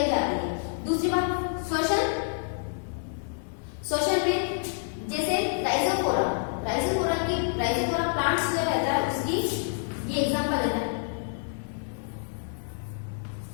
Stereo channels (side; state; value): right; silent; digital silence